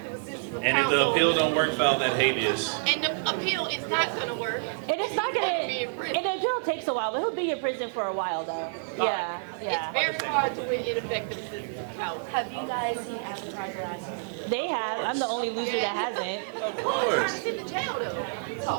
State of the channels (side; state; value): left; silent; digital silence